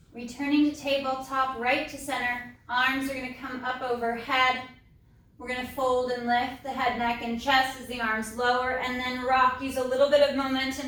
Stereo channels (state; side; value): identical; both; correlation 1.00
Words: Returning to tabletop, right to center. Arms are going to come up overhead. We're going to fold and lift the head, neck, and chest as the arms lower, and then rock. Use a little bit of